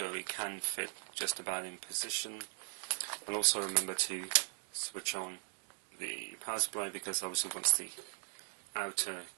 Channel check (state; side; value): silent; left; 52 dB below the other